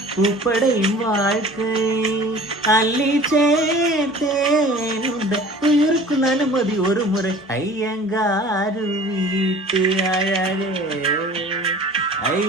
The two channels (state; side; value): normal; both; correlation 0.45